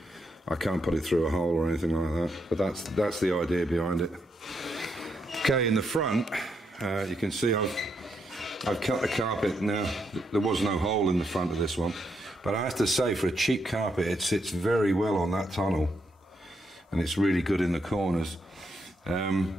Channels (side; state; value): both; normal; correlation 0.79